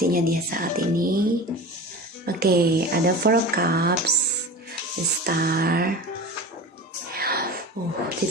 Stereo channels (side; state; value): both; normal; correlation 0.33